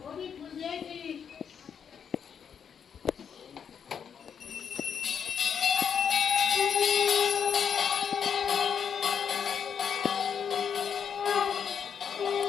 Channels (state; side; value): quieter; right; 7.4 dB